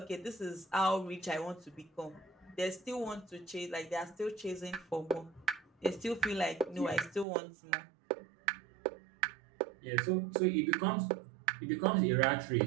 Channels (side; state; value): left; drops out; at 7.2 s